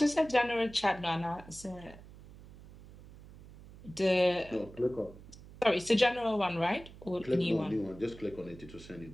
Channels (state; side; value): noise; right; hum, 19 dB below the sound